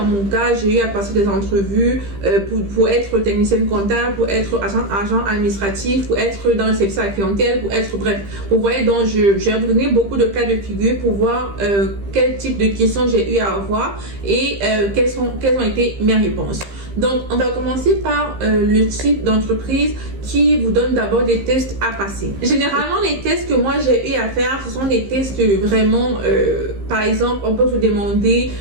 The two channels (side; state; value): left; late; 15 ms